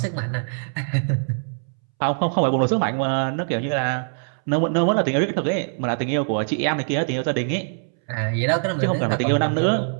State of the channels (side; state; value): left; silent; 63 dB below the other